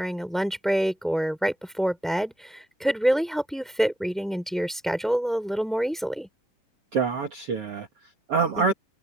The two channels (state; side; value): normal; both; correlation 0.75